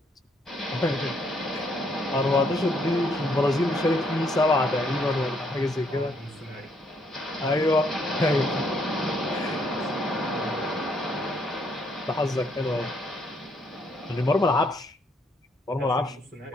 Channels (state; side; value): normal; both; correlation 0.71